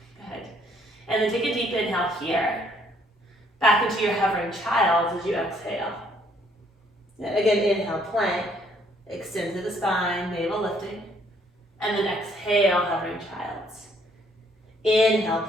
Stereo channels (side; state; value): both; normal; correlation 0.66